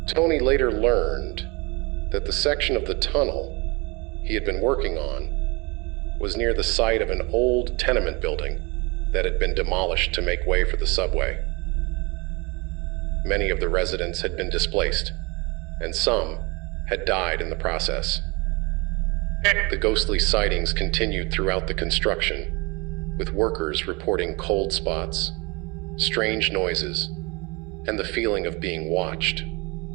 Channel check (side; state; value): left; quieter; 27.5 dB